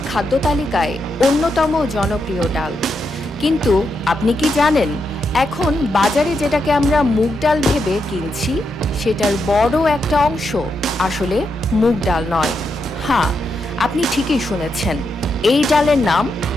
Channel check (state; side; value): normal; both; correlation 0.83